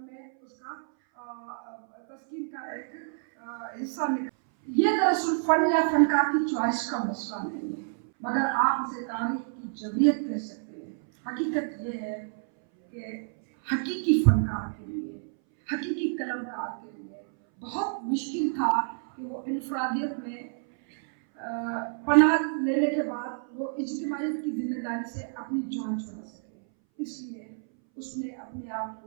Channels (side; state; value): left; silent; 59 dB below the other